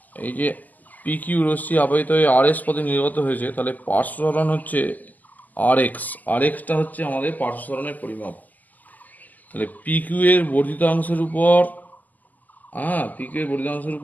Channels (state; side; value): late; right; 0.082 ms